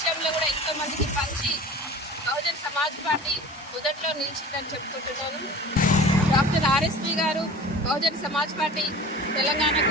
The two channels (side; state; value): both; normal; correlation 0.41